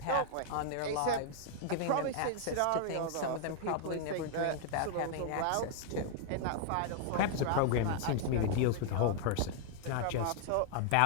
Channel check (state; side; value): different; both; correlation 0.00